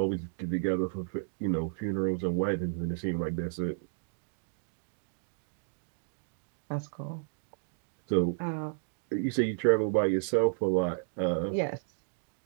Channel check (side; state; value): left; silent; digital silence